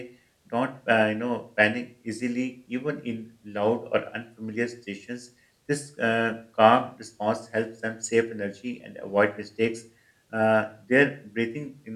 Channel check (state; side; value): identical; both; correlation 1.00